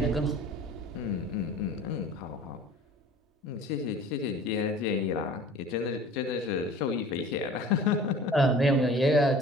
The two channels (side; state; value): both; normal; correlation 0.45